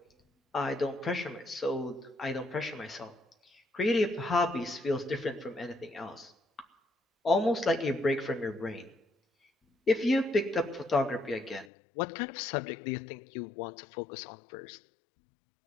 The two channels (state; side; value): drops out; right; at 11.7 s